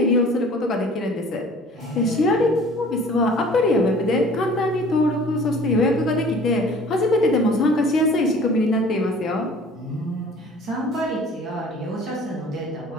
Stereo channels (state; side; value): normal; both; correlation 0.48